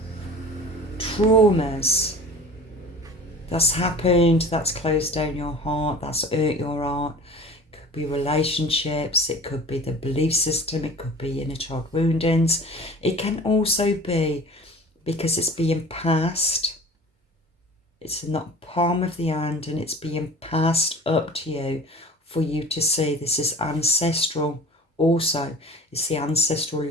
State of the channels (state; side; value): normal; both; correlation 0.42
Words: traumas that's happened, that's closed down your heart, that's hurt your heart. It could be relationships, it could be the belief system, it could be inner child woundings. It can also be because it's being passed. It's in the palm of the hand and it's being passed up to you for you to see. This is ancestral also. It's the ancestral